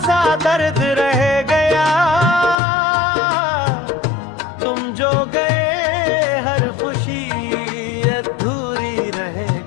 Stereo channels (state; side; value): drops out; right; at 2.6 s